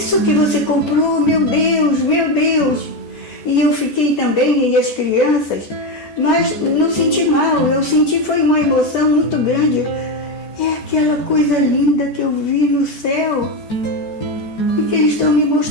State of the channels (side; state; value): right; late; 14 ms